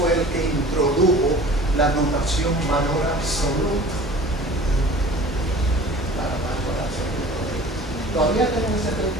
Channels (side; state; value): both; normal; correlation 0.44